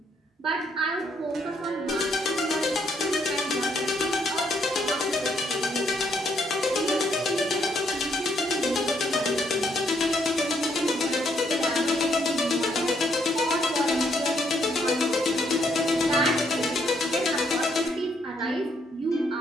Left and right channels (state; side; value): normal; both; correlation 0.72